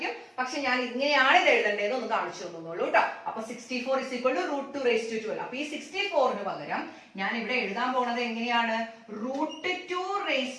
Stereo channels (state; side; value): identical; both; correlation 1.00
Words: പക്ഷെ ഞാൻ ഇങ്ങനെയാണ് ഇത് എഴുതേണ്ടത് ഒന്ന് കാണിച്ചു തന്നോളൂ കേട്ടോ. അപ്പൊ 64 is equal to root 2 raised to 12. അപ്പൊ ഈ 64ന് പകരം ഞാൻ ഇവിടെ എഴുതാൻ പോണത് എങ്ങനെയാണ്? root 2 raised